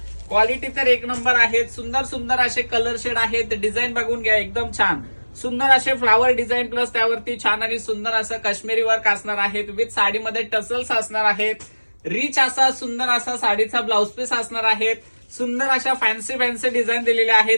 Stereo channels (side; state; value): both; inverted; correlation -1.00